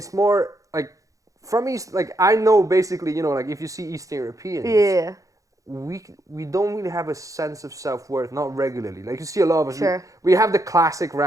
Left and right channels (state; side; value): late; left; 0.16 ms